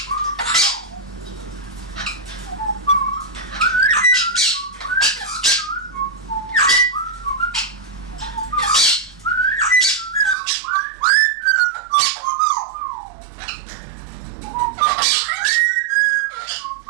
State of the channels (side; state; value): left; drops out; at 10.4 s